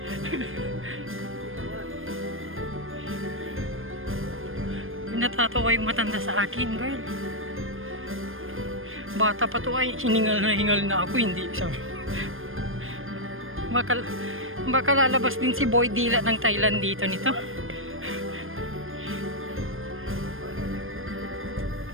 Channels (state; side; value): late; left; 0.59 ms